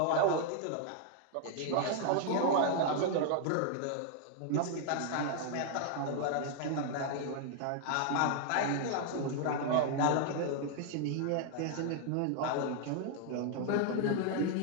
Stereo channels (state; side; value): different; both; correlation 0.00